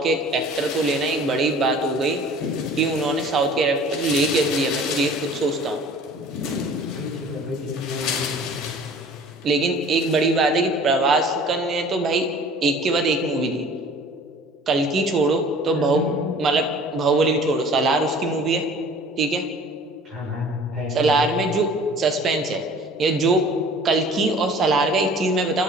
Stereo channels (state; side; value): normal; both; correlation 0.47